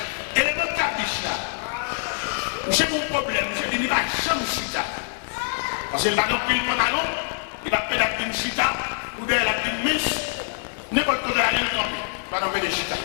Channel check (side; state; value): right; silent; 62 dB below the other